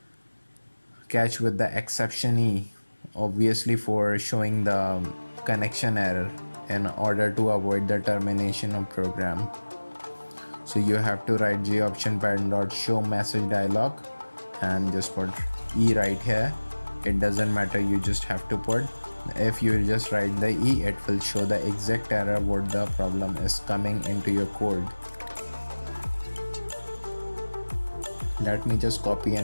catch with the exception E, obviously for showing the connection error in order to avoid the termination of program. So you have to write J option pattern dot show message dialog and just put E right here. It doesn't matter, you just have to put. If you just write the E, it will show the exact error what the problem is coming into your code. Let me just copy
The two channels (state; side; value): inverted; both; correlation -1.00